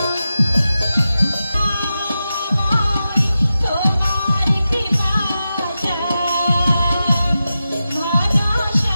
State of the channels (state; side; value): inverted; both; correlation -0.91